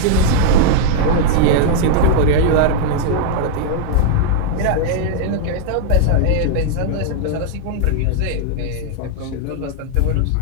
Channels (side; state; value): both; different; correlation 0.00